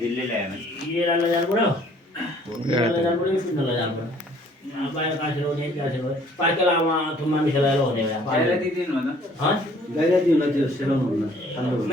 दिल्ली ल्याएन येरा लजान पड्यो लजान पड्यो सुन्न लजान पड्यो बाहिर कासेर हुने कासेर हो पार्केलामा थुम्मा मिसाएर हुने भए बाहिर दिदिनु भन ह गाइरा दिनु त्यो सेलाउनु हुन्न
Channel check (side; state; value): both; normal; correlation 0.58